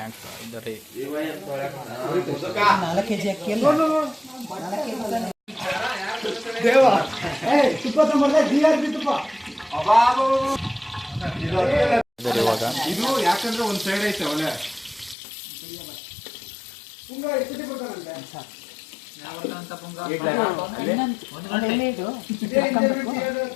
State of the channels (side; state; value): right; drops out; at 15.2 s